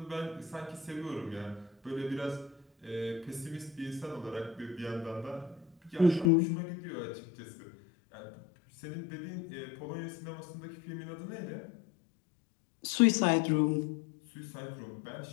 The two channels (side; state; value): right; drops out; at 6.3 s